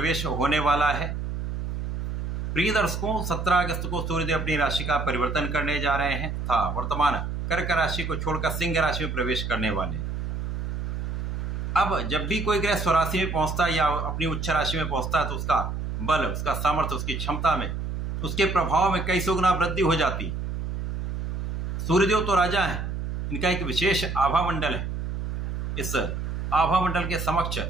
होने वाला है। प्रिय दर्शकों, 17 अगस्त को सूर्यदेव अपनी राशि का परिवर्तन करने जा रहे हैं तथा वर्तमान कर्क राशि को छोड़कर सिंह राशि में प्रवेश करने वाले। अब जब भी कोई ग्रह स्वराशि में पहुंचता है या अपनी उच्च राशि में पहुंचता है तो उसका बल, उसका सामर्थ्य, उसकी क्षमता में, उसके प्रभाव में कई सौ गुना वृद्धि हो जाती। सूर्यदेव तो राजा हैं, इनका एक विशेष आभा मंडल है। इस आभा मंडल के समक्ष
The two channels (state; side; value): noise; right; hum, 3 dB below the sound